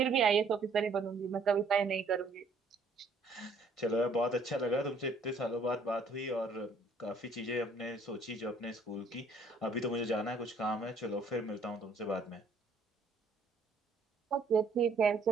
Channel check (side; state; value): left; quieter; 3.3 dB